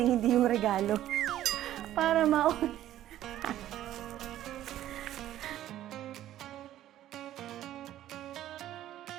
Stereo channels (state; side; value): quieter; left; 12.9 dB